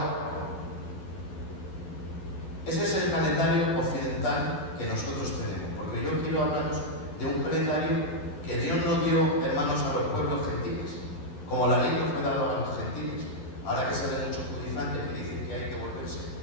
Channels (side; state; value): right; late; 12 ms